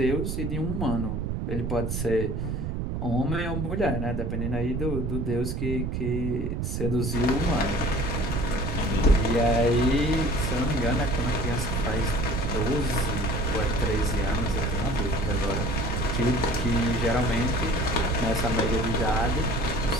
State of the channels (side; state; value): right; noise; rumble, 2 dB below the sound